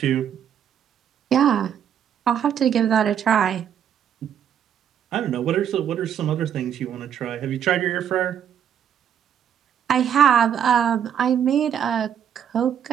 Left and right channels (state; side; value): quieter; left; 9.0 dB